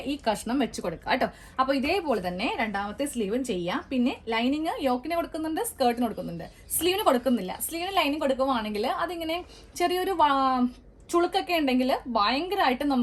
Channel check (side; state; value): both; identical; correlation 1.00